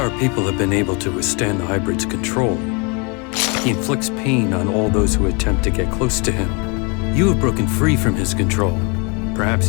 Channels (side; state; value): right; quieter; 32.3 dB